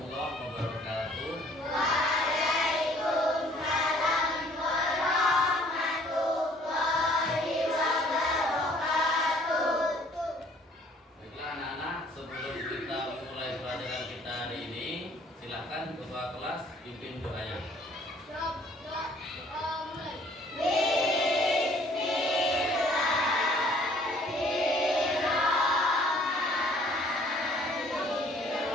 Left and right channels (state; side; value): normal; both; correlation 0.58